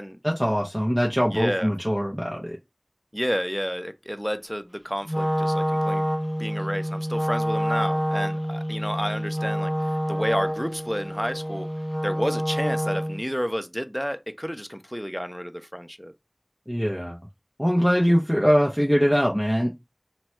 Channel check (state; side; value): identical; both; correlation 1.00